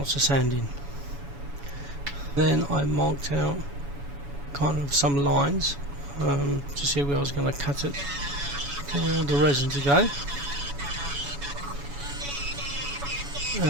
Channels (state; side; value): late; left; 7.1 ms